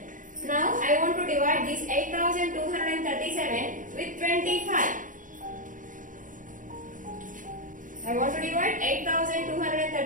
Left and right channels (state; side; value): late; left; 0.38 ms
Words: now I want to divide this 8237 with 25. I want to divide